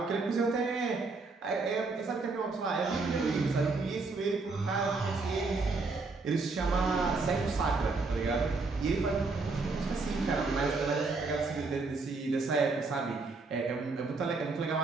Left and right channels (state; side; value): quieter; left; 3.8 dB